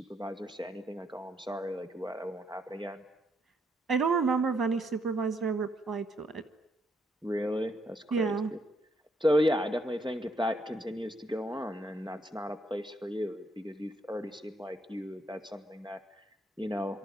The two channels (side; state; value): both; normal; correlation 0.73